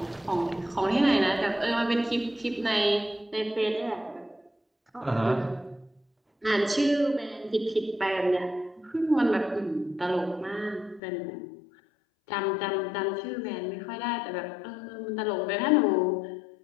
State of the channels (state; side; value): drops out; right; at 11.0 s